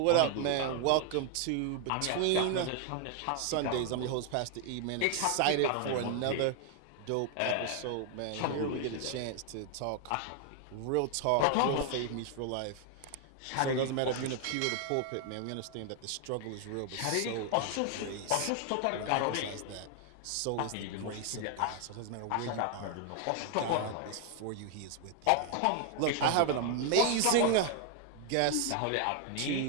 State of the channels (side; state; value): both; different; correlation 0.00